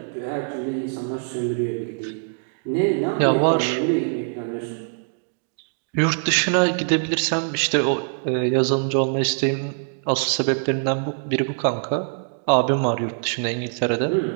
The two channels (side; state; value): left; silent; digital silence